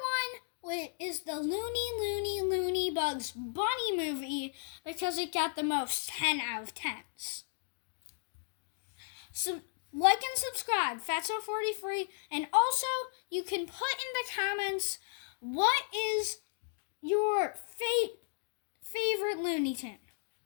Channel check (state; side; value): silent; right; digital silence